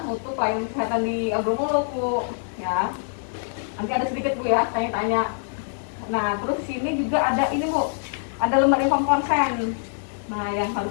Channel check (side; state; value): right; silent; 61 dB below the other